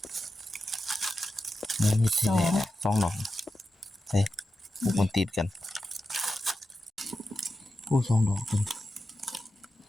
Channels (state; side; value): normal; both; correlation 0.91